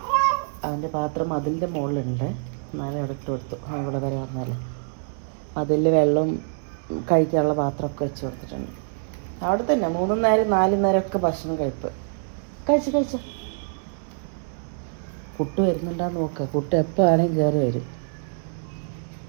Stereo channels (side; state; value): left; silent; digital silence